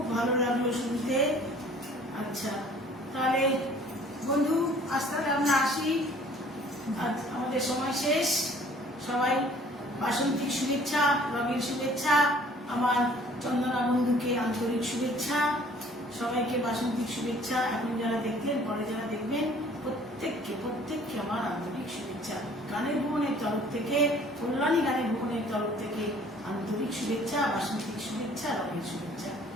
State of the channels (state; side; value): normal; both; correlation 0.54